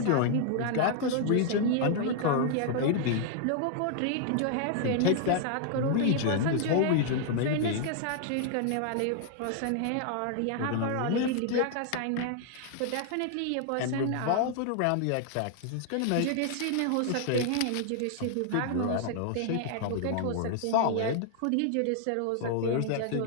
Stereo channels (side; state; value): both; different; correlation 0.00